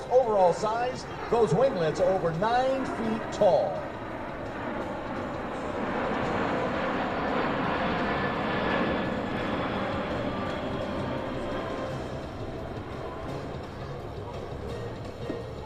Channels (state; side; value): identical; both; correlation 1.00